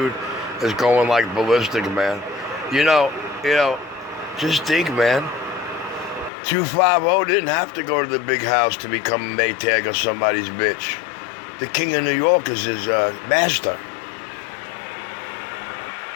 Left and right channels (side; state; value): right; drops out; at 6.3 s